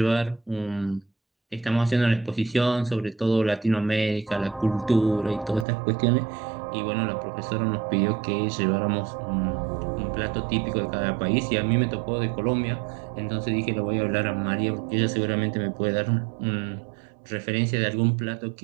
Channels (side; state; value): left; drops out; at 5.7 s